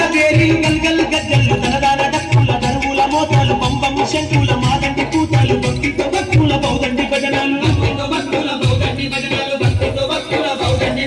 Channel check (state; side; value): identical; both; correlation 1.00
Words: పేరి గల్గల్ గజ్జలు తనదాన డక్కుల దరువుల మోతాలు పంపము శంకుల మాదండి కూతాలు భక్తితో భక్తుల బౌదండి భజనాలు